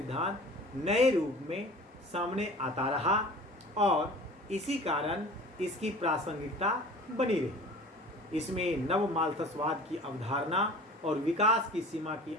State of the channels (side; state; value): both; normal; correlation 0.42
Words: नए रूप में सामने आता रहा और इसी कारण इसकी प्रासंगिकता बनी रही। इसमें नव माल्थसवाद की अवधारणा और विकास की सीमा की